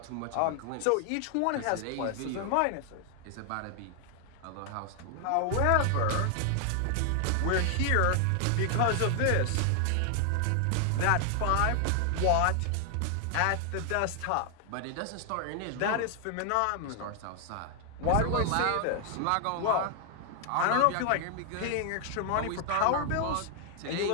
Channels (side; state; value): both; different; correlation 0.00